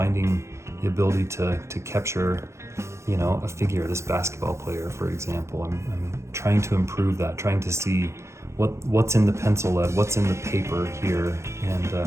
the ability to capture, you know, a figure, this basketball player, for example. I'm trying to improve that, trying to see what's in the pencil lead, what's in the paper here,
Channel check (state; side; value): late; left; 0.14 ms